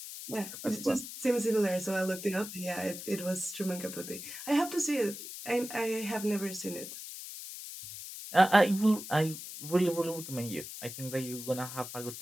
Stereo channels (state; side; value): noise; left; hiss, 10 dB below the sound